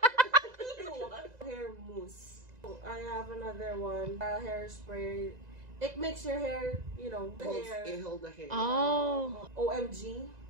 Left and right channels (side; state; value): left; late; 2.0 ms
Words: Hair mousse. I have another one, hairspray. It makes your hair, you know, the hair. It hold the hair. Oh. OMG.